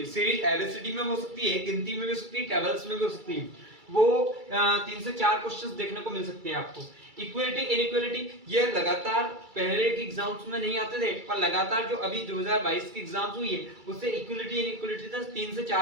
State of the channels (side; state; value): left; late; 2.3 ms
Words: सीरीज एबीसीडी में हो सकती है, गिनती में भी हो सकती है, टेबल्स में भी हो सकती है, वो 3 से 4 क्वेश्चंस देखने को मिल सकते हैं आपको। इक्वलिटी इनइक्वलिटी ये लगातार पहले के एग्जाम्स में नहीं आते थे, पर लगातार जो अभी 2022 की एग्जाम्स हुई है उससे इक्वलिटी इनइक्वलिटी तक 3 से